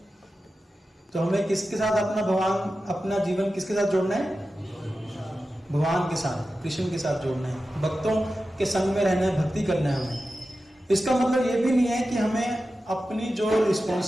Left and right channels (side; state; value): both; normal; correlation 0.93